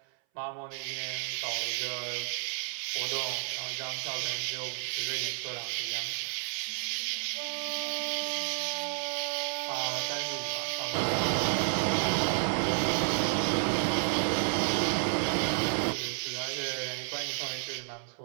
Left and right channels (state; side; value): silent; left; 57 dB below the other